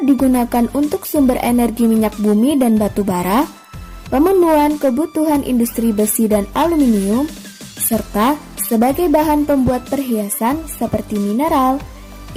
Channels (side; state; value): both; identical; correlation 1.00